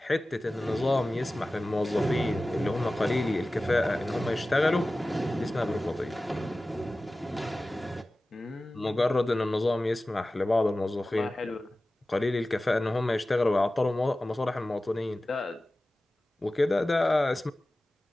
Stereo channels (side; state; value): both; normal; correlation 0.96